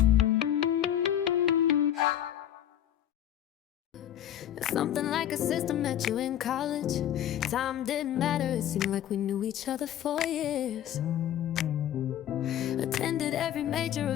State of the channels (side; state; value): right; quieter; 11.0 dB